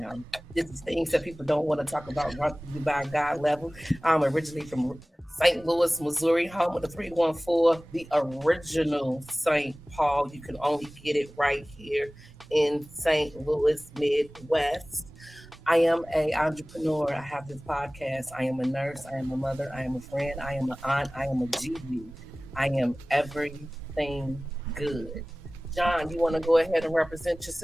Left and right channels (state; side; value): normal; both; correlation 0.98